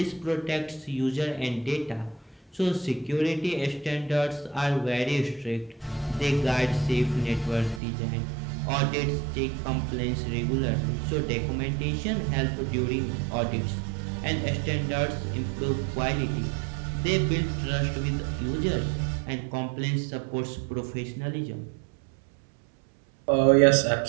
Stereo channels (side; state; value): left; drops out; at 7.8 s